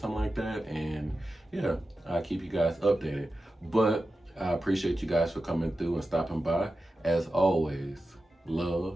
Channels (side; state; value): both; normal; correlation 0.92